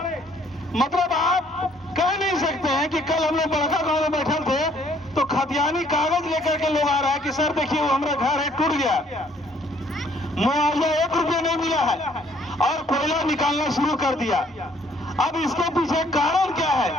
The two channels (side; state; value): both; normal; correlation 0.63